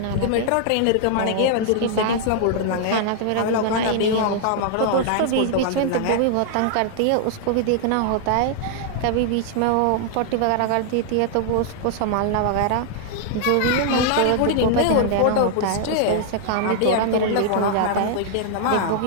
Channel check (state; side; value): different; both; correlation 0.00